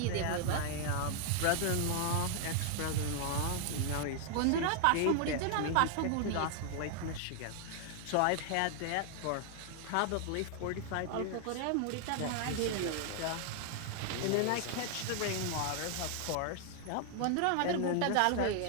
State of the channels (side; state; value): both; different; correlation 0.00